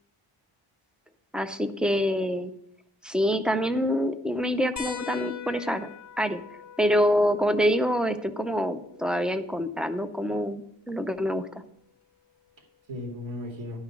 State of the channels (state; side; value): normal; both; correlation 0.76